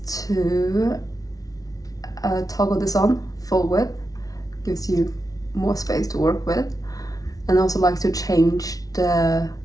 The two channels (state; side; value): late; right; 0.18 ms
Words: to toggle this on full width, gives you more space to work with, and also like to change the